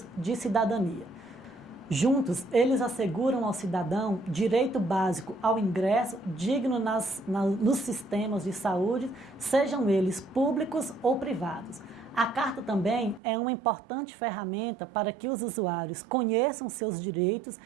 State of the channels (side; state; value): left; drops out; at 13.2 s